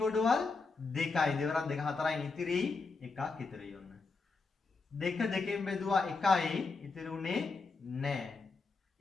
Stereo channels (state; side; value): quieter; right; 4.2 dB